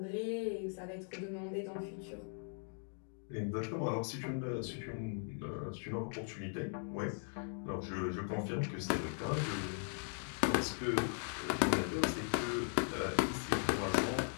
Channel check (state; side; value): silent; right; 52 dB below the other